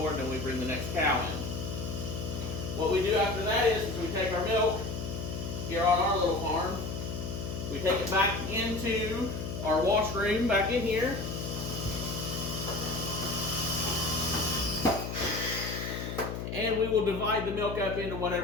and then we bring the next cow in. What we do after that is we take our milk here on our little farm, we take it back into our wash room back in here. And we will divide the milk up into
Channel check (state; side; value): noise; left; hum, 5 dB below the sound